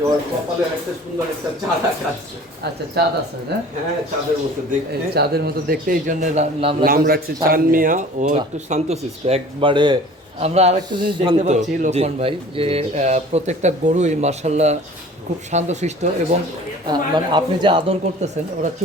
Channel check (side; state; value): both; normal; correlation 0.46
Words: ওর কপালে একটা সুন্দর একটা চাঁদ আছে। আচ্ছা চাঁদ আছে না? হ্যাঁ, চাঁদের মতো দেখতে। এই চাঁদের মতো দেখতে, এই জন্য নাম রাখছে চানমিয়া। ও একটু শান্তশিষ্ট একবারে। আমরা আরেকটা জিনিস দেখতে শান্ত, পাচ্ছি জি। লোকমান ভাই, যে প্রত্যেকটা গরুই মার্শাল্লাহ খুব শান্তশিষ্ট, এবং মানে আপনি যে আদর করতেছেন ওরা